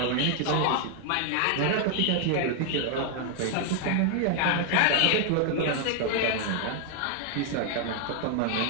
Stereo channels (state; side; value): different; both; correlation 0.00